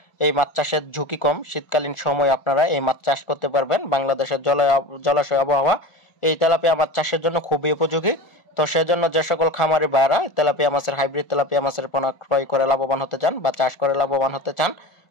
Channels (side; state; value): right; late; 1.4 ms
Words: এই মাছ চাষের ঝুঁকি কম। শীতকালীন সময় আপনারা এই মাছ চাষ করতে পারবেন। বাংলাদেশের জলাশয় আবহাওয়া এই তেলাপিয়া মাছ চাষের জন্য খুবই উপযোগী। তো সেজন্য যে সকল খামারি ভাইরা তেলাপিয়া মাছের হাইব্রিড তেলাপিয়া মাছের পোনা ক্রয় করে লাভবান হতে চান বা চাষ করে লাভবান হতে চান,